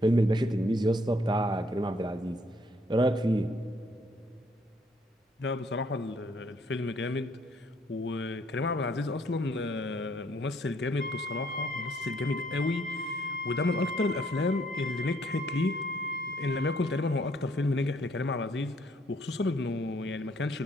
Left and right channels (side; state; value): both; normal; correlation 0.66